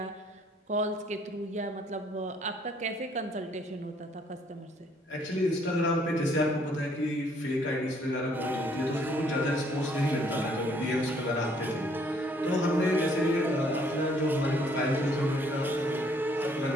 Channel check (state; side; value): normal; both; correlation 0.64